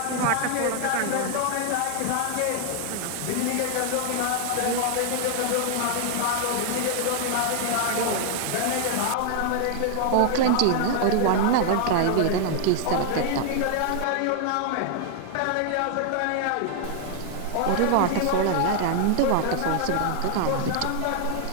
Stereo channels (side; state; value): both; different; correlation 0.00